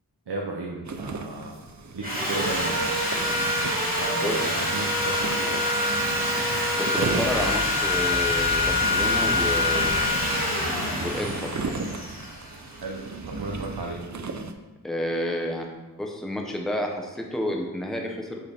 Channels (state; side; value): normal; both; correlation 0.03